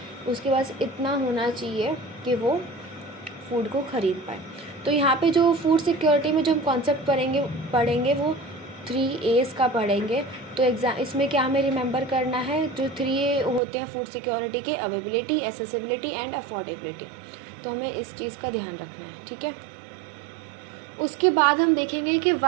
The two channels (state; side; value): drops out; left; at 13.6 s